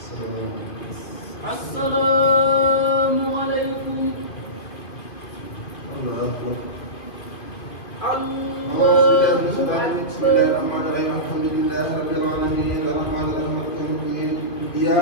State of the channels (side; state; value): right; late; 2.2 ms